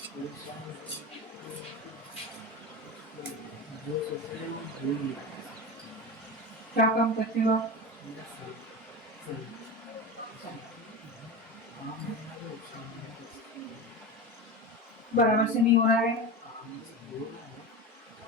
क्या काम करते हो आप? बराबर से नहीं हो रहा है।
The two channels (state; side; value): normal; both; correlation 0.25